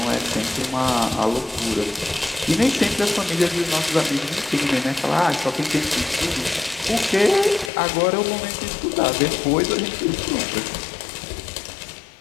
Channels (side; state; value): right; drops out; at 7.7 s